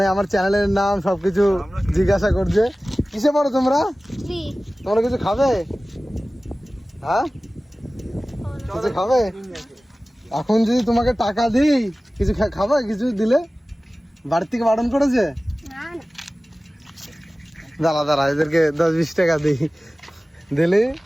আমার চ্যানেলের নাম সবকিছু জিজ্ঞাসা করছে। কিসে পড়ো তোমরা? তোমরা কিছু খাবে? হ্যাঁ, কিছু খাবে? এখন যদি তোমাকে টাকা দিই কিছু খাবে? কিছু দিলে বাড়ি থেকে বারণ করেছে? দাঁড়া দাঁড়া, এদেরকে 10-20 টাকা দিই, দিলে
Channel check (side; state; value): both; normal; correlation 0.97